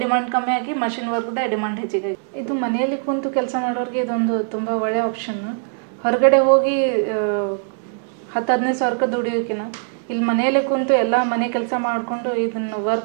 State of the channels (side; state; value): left; silent; digital silence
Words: ಡಿಮಾಂಡ್ ಕಮ್ಮಿ ಆಗಿ ಮಷಿನ್ ವರ್ಕ್ದೇ ಡಿಮಾಂಡ್ ಹೆಚ್ಚಿಗೆ. ಇದು ಮನೆಯಲ್ಲಿ ಕುಂತು ಕೆಲಸ ಮಾಡೋರಿಗೆ ಇದೊಂದು ತುಂಬ ಒಳ್ಳೆಯ ಆಪ್ಷನ್ನು. ಹೊರಗಡೆ ಹೋಗಿ 10-15 ಸಾವಿರಕ್ಕೆ ದುಡಿಯೋಕ್ಕಿಂತ ಇಲ್ಲಿ ಮನೆಯಲ್ಲೇ ಕುಂತು ಎಲ್ಲ ಮನೆ ಕೆಲಸ ಮಾಡಿಕೊಂಡು ಇದನ್ನು